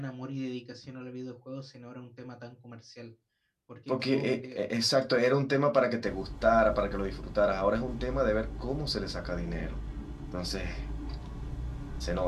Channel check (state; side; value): identical; both; correlation 1.00